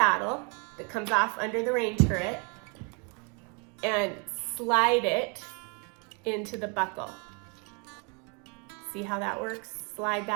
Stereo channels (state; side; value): quieter; left; 34.4 dB